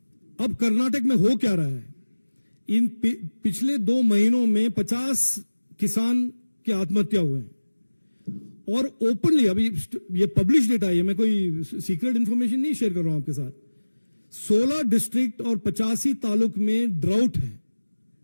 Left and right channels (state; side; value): inverted; both; correlation -1.00